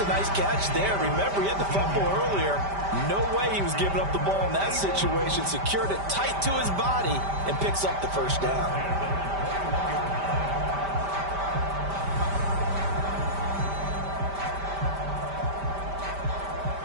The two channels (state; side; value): late; left; 5.1 ms